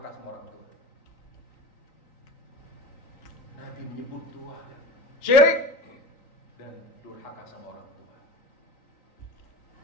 sama orang tua. Nabi menyebut dua, syirik dan durhaka sama orang tua.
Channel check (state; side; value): late; right; 3.9 ms